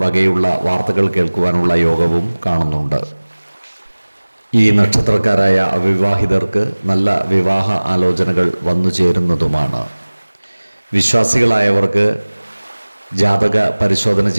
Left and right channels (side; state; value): both; inverted; correlation -1.00